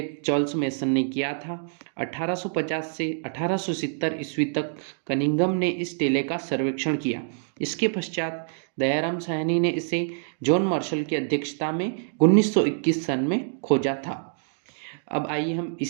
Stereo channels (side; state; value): left; silent; digital silence